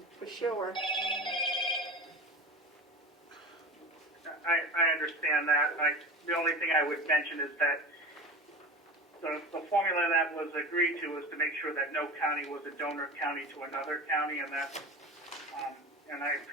for sure. I understand that. The only thing I would mention is that the formula that was agreed to was to make sure that no county was a donor county to another county, and that, and I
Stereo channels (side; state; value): both; normal; correlation 0.31